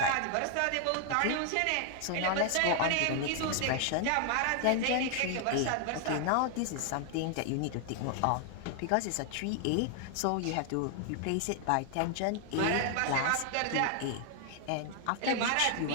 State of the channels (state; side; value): different; both; correlation 0.00